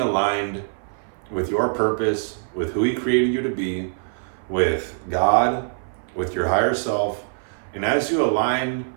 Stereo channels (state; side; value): silent; left; 57 dB below the other